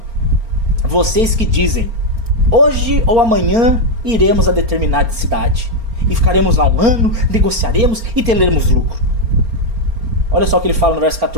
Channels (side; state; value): left; late; 4.3 ms